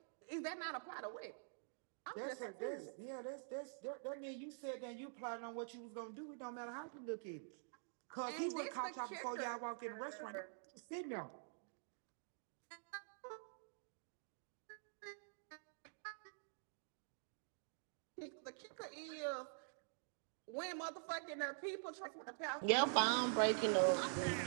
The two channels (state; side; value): silent; left; digital silence